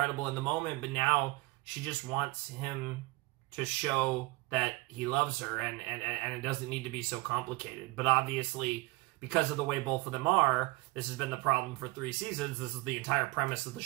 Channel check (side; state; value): left; quieter; 22.2 dB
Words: in the moment, but now she just wants him to show that he loves her, and it doesn't need to be so complicated. But obviously, because of the way both of them are, this has been the problem for 3 seasons. This is the entire premise of the